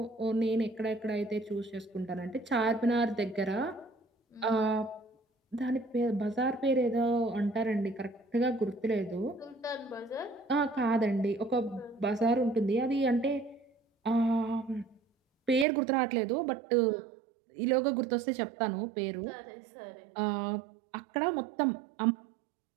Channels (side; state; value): left; drops out; at 15.7 s